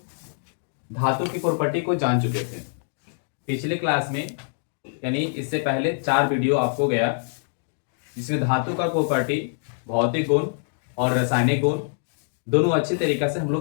धातु की प्रॉपर्टी को जान चुके थे पिछले क्लास में, यानी इससे पहले 4 वीडियो आपको गया जिसमें धातु का प्रॉपर्टी, भौतिक गुण और रासायनिक गुण दोनों अच्छे तरीके से हम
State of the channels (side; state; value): right; silent; digital silence